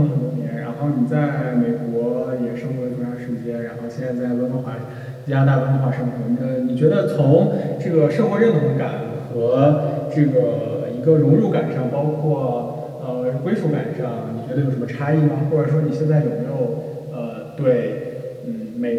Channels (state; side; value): identical; both; correlation 1.00